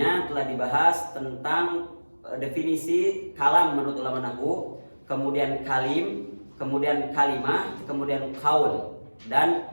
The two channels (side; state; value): both; inverted; correlation -1.00